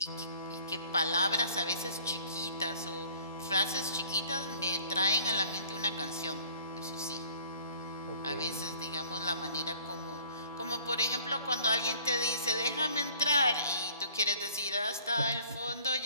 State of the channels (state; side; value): inverted; both; correlation -0.54